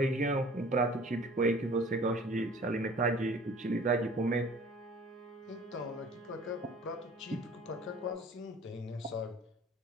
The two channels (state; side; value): normal; both; correlation 0.48